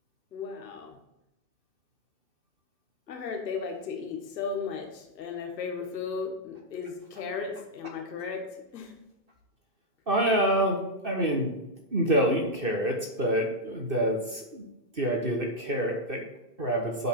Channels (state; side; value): late; left; 2.6 ms